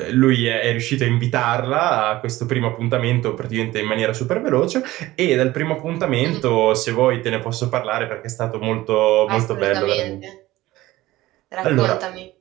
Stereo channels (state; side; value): quieter; left; 17.3 dB